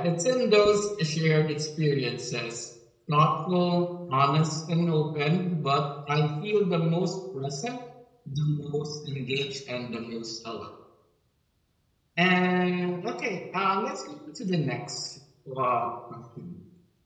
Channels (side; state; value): both; identical; correlation 1.00